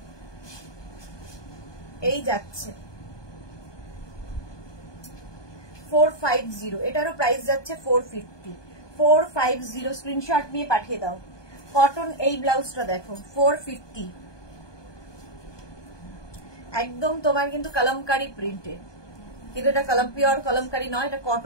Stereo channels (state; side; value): late; right; 1.2 ms